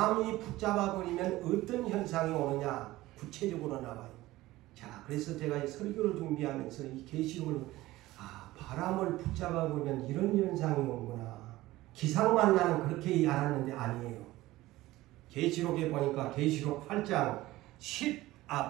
붙잡아버리면 어떤 현상이 오느냐? 구체적으로 나와요. 자, 그래서 제가 이 설교를 준비하면서 이 계시록을 바람을 붙잡아보면 이런 현상이 오는구나. 기상만 나는 그렇게 알았는데 아니에요. 계시록에 보니까 계시록 8장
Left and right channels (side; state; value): left; quieter; 17.5 dB